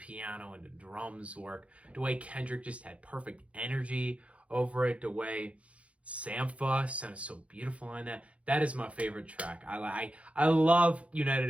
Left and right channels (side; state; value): left; late; 0.063 ms